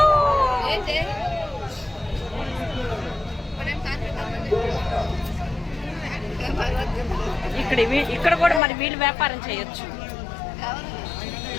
ఇక్కడ కూడా మరి వీళ్ళు వ్యాపారం చేయొచ్చు.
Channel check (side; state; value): right; drops out; at 8.6 s